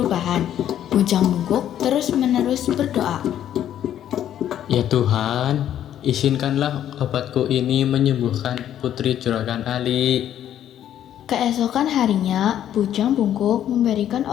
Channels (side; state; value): right; quieter; 10.8 dB